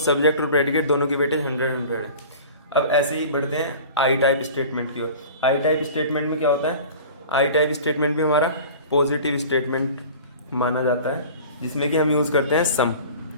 और प्रेडिकेट दोनों की वेटेज 100 है। अब ऐसे ही बढ़ते हैं आई टाइप स्टेटमेंट की ओर। आई टाइप स्टेटमेंट में क्या होता है, आई टाइप स्टेटमेंट भी हमारा पॉजिटिव स्टेटमेंट माना जाता है, जिसमें कि हम यूज़ करते हैं सम।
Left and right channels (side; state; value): both; inverted; correlation -0.40